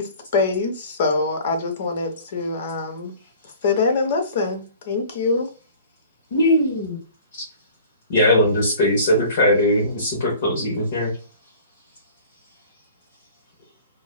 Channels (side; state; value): both; inverted; correlation -0.47